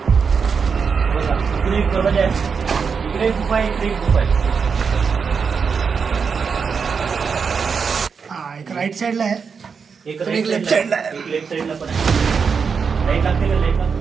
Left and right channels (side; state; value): left; quieter; 5.8 dB